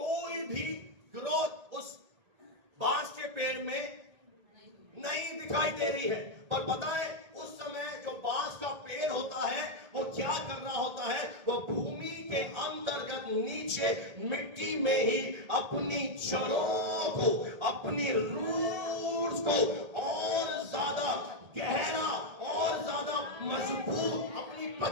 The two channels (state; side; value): late; left; 1.8 ms